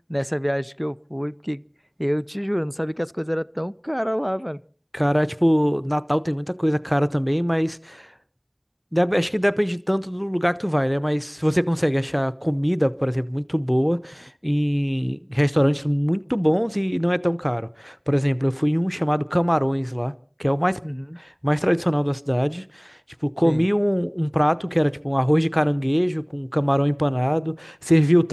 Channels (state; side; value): identical; both; correlation 1.00